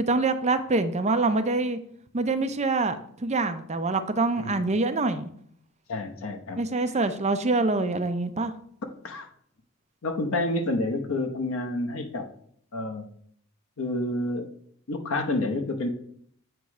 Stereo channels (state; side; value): normal; both; correlation 0.25